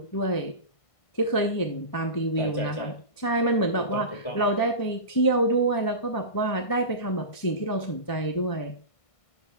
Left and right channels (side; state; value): right; late; 1.5 ms